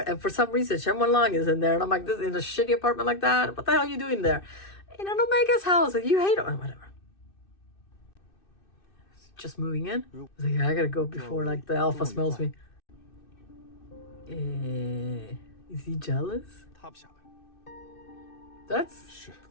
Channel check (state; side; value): late; right; 2.6 ms